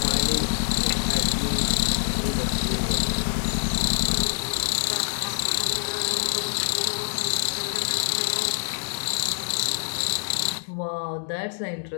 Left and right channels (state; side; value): silent; right; 61 dB below the other